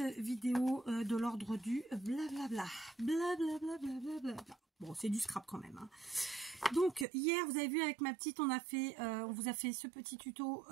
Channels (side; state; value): left; drops out; at 7.1 s